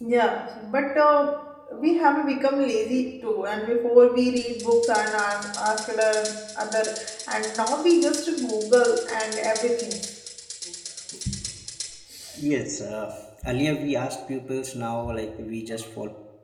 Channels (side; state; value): both; identical; correlation 1.00